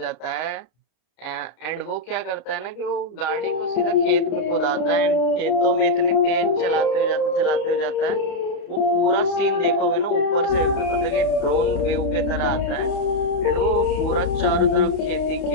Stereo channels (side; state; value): right; late; 32 ms